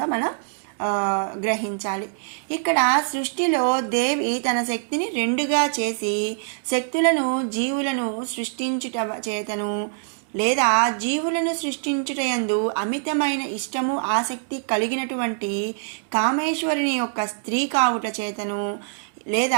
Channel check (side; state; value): left; silent; digital silence